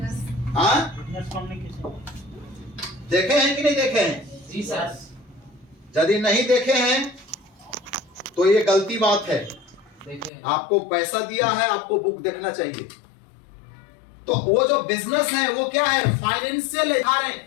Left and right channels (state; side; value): drops out; right; at 10.3 s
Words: हाँ, देखे हैं कि नहीं देखे हैं? जी सर। यदि नहीं देखे हैं तो ये गलती बात है। देखें। आपको पैसा दिया है, आपको बुक देखना चाहिए। तो वो जो बिजनेस है वो क्या है? फाइनेंशियल है,